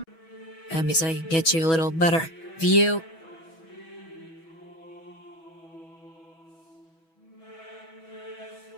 Let me see if I can get you a little better view.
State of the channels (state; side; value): late; right; 6.2 ms